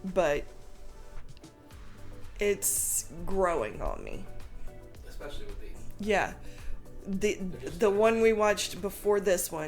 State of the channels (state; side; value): identical; both; correlation 1.00